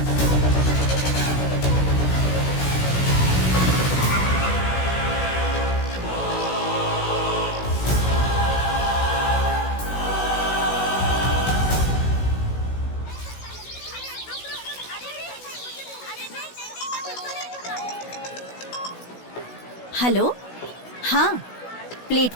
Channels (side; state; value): right; late; 16 ms